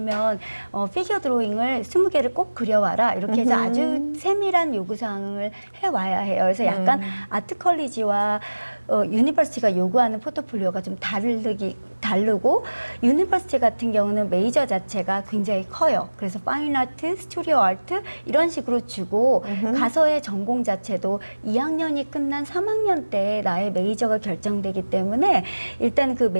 피겨 드로잉을 20개를 꼭 그려와라 이렇게 해서 아주 세밀한 요구사항을 해와야 해요. 그래서 약간 아트 컬리지와 유니버시티가 요구하는 포트폴리오가 좀 다르고 유니버시티 같은 경우는 메이저 자체가 굉장히 커요. 그래서 파인 아트, 스튜디오 아트 이런 식으로 주고 가서의 전공 자체도 2학년이 끝난 3학년 때 나의 메이저가 결정되기 때문에 일단 그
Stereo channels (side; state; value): both; inverted; correlation -1.00